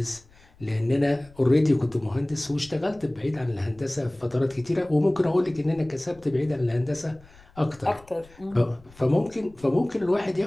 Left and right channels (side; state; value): left; noise; rumble, 26 dB below the sound